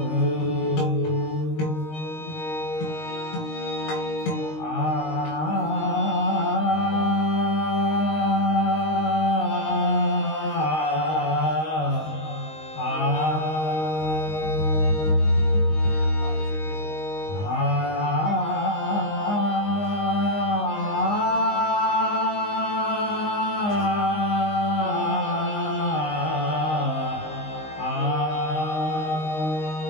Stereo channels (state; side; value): late; right; 19 ms